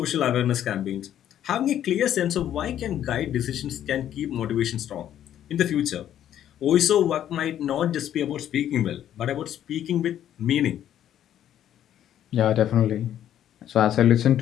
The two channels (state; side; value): quieter; right; 10.9 dB